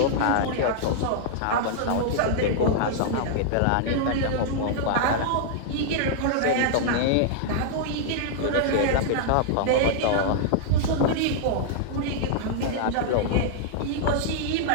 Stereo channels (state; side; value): different; both; correlation -0.01